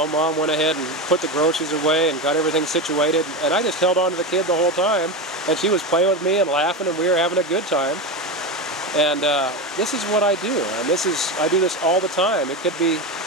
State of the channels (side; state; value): both; normal; correlation 0.18